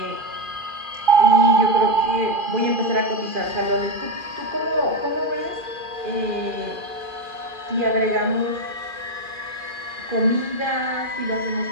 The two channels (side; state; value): left; late; 2.4 ms